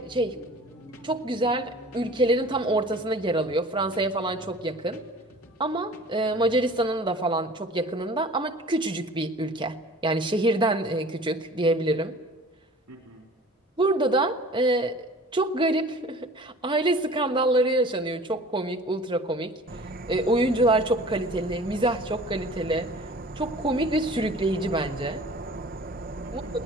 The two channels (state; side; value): normal; both; correlation 0.45